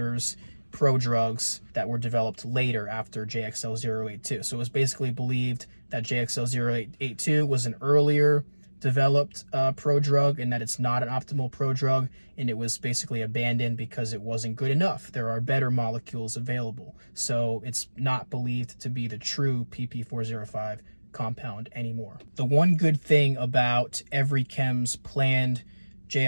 prodrugs that were developed later after JXL082. So it was basically believed that JXL082 was an earlier developed prodrug, and that it's not an optimal prodrug, and it was basically abandoned because it wasn't good enough. There are better molecules available. So it's not believed to be the true PP405 compound anymore. The one good thing about EveryChem's planned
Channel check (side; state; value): both; inverted; correlation -1.00